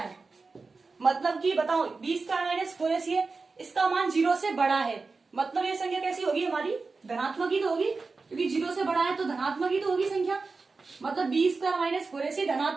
मतलब कि बताओ बी स्क्वायर माइनस 4ac है, इसका मान 0 से बड़ा है, मतलब ये संख्या कैसी होगी हमारी, धनात्मक ही तो होगी, क्योंकि 0 से बड़ा है तो धनात्मक ही तो होगी संख्या। मतलब बी स्क्वायर माइनस 4ac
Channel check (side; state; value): left; quieter; 4.1 dB